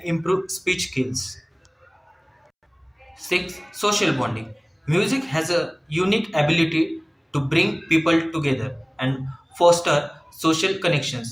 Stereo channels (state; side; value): identical; both; correlation 1.00